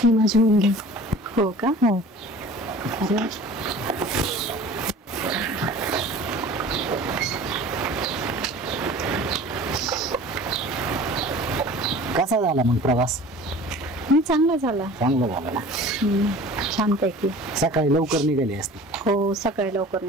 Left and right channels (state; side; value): normal; both; correlation 0.43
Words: माझी मुलगी. हो का? हो. अरे कसा झाला मग प्रवास? चांगला झाला. चांगला झाला ना. छानपैकी. सकाळी लवकर निघाली असते. हो सकाळी लवकर